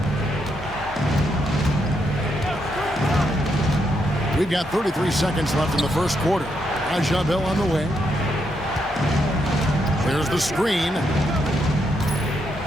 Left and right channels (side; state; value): both; normal; correlation 0.79